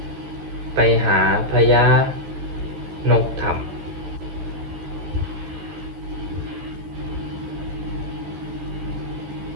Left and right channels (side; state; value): left; late; 14 ms